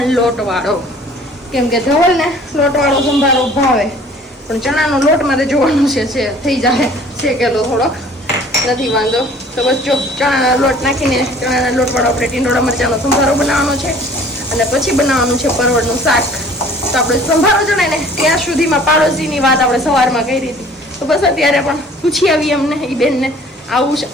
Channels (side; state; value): both; normal; correlation 0.51